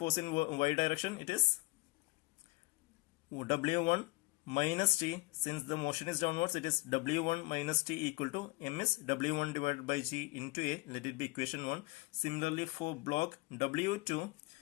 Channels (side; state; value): right; quieter; 24.1 dB